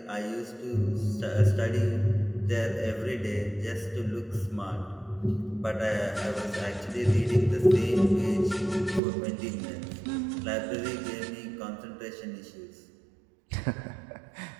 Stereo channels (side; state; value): left; drops out; at 9.0 s